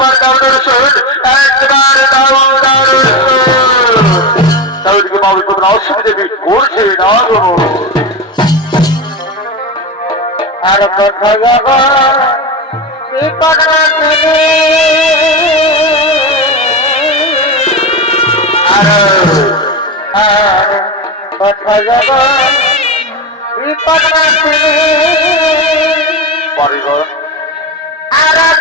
দাও দর্শন, একবার দাও দর্শন। তাহলে কি বাবু তোমরা অসুবিধা করছে না গো? আর কোথায় যাব বিপদ আর কোথায় যাব বিপদ পরিবার আর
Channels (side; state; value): both; normal; correlation 0.18